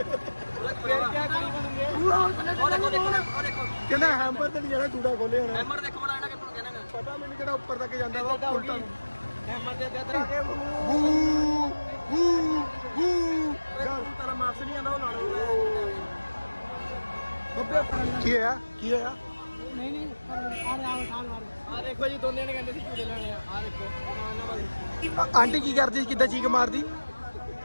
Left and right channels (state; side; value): inverted; both; correlation -1.00